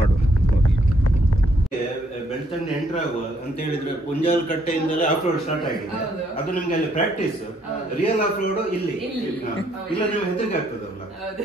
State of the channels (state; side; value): normal; both; correlation 0.70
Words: ಬೆಳ್ತಂಡಿ ಎಂಟರ್ ಆಗುವ ಅಂತ ಹೇಳಿದ್ರೆ ಪುಂಜಾಲ್ ಕಟ್ಟೆಯಿಂದಲೇ ಆಫ್ ರೋಡ್ ಸ್ಟಾರ್ಟ್ ಆಗಿದೆ. ಅದು ನಿಮ್ಗೆ ಅಲ್ಲಿ ಪ್ರಾಕ್ಟೀಸ್, ರಿಯಲ್ ಆಫ್ ರೋಡ್ ಇಲ್ಲಿ ಇಲ್ಲ. ನಿಮ್ಗೆ ಹೆದರಿಕೆ ಆಗ್ತದಲ್ಲ,